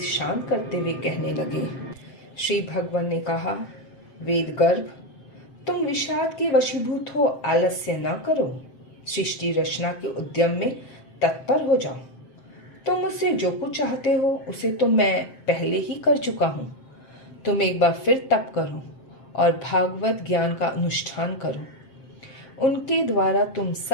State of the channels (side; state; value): right; late; 7.6 ms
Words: शांत करते हुए कहने लगे। श्री भगवान ने कहा, वेद गर्भ, तुम विषाद के वशीभूत हो, आलस्य न करो, सृष्टि रचना के उद्यम में तत्पर हो जाओ। तुम मुझसे जो कुछ चाहते हो उसे तो मैं पहले ही कर चुका हूँ। तुम एक बार फिर तप करो और भागवत ज्ञान का अनुष्ठान करो। उनके द्वारा तुम